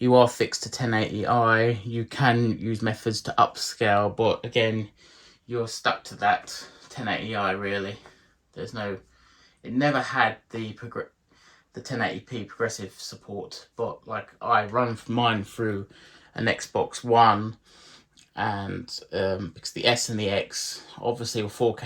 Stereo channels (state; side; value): identical; both; correlation 1.00